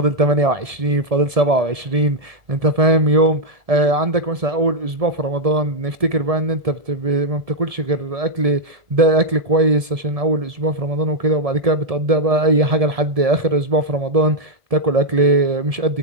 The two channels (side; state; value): left; late; 1.7 ms